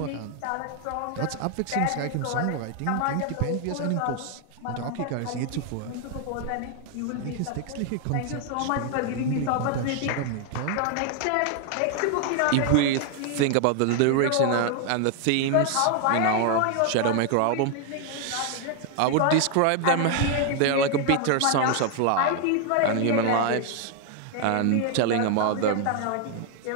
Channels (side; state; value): both; different; correlation 0.00